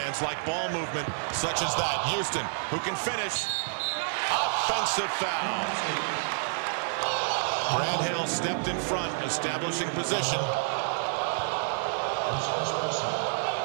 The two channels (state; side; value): silent; left; 59 dB below the other